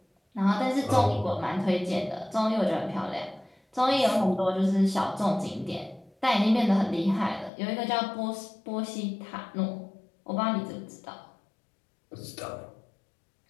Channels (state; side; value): drops out; right; at 7.5 s